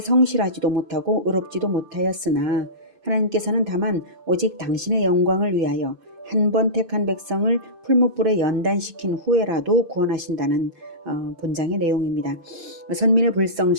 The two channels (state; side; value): late; left; 2.5 ms